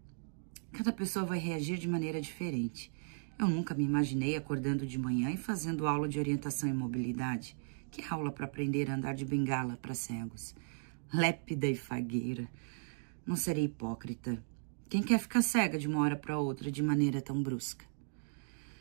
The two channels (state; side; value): silent; left; digital silence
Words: Cada pessoa vai reagir de maneira diferente. Eu nunca me imaginei acordando de manhã e fazendo aula de orientação e mobilidade. Que aula para aprender a andar de bengala para cegos? Lépida e fagueira. Não serei hipócrita. Quem quer ficar cega de uma hora para outra de maneira tão brusca?